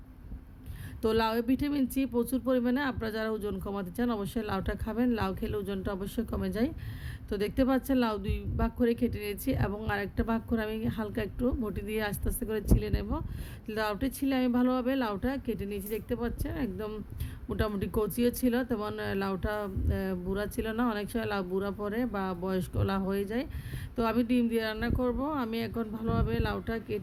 তো লাউয়ে ভিটামিন সি প্রচুর পরিমাণে। আপনারা যারা ওজন কমাতে চান অবশ্যই লাউটা খাবেন। লাউ খেলে ওজনটা অবশ্যই কমে যায়। তো দেখতে পাচ্ছেন লাউ দুই ভাগ করে কেটে নিয়েছি এবং আরেকটা ভাগ করে আমি হালকা একটু বটি দিয়ে আস্তে আস্তে করে ছিলে নেব। লাউটা ছিলে আমি ভালোভাবে লাউটা কেটে নিয়েছি। দেখতে পাচ্ছেন একদম মোটামুটি কচিও ছিল, তেমন লাউটা বুড়া ছিল না। অনেক সময় লাউ বুড়া পড়ে বা বয়স্ক লাউ হয়ে যায়। তো আমি ডিম দিয়ে রান্না করব। আমি এখন ভালোভাবে লাউটা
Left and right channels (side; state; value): both; identical; correlation 1.00